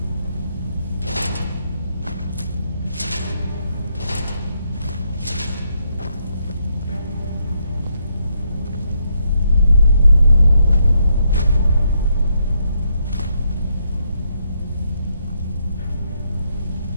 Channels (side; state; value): both; inverted; correlation -0.77